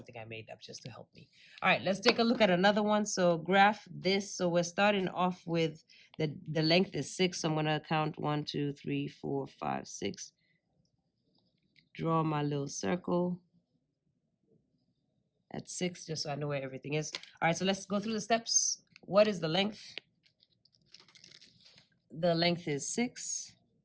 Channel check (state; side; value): identical; both; correlation 1.00